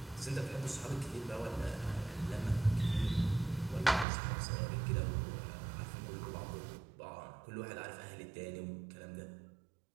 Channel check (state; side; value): drops out; left; at 4.0 s